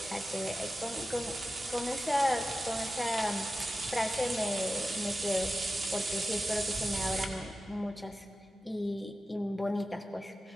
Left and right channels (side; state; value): both; normal; correlation 0.93